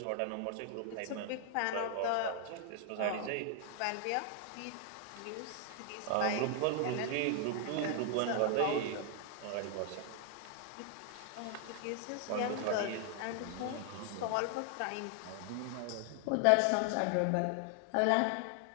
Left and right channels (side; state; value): both; different; correlation 0.00